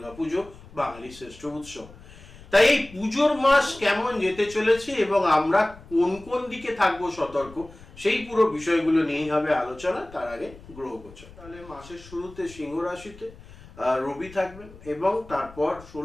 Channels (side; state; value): left; noise; rumble, 20 dB below the sound